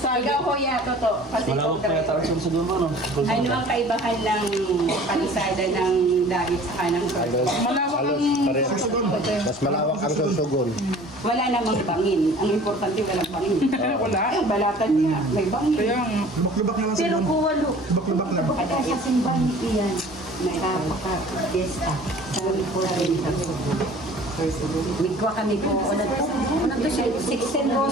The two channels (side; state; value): both; normal; correlation 0.47